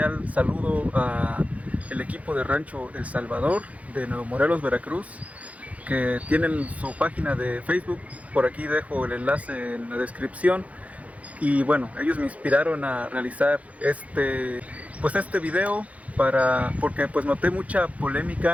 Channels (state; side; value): late; left; 0.067 ms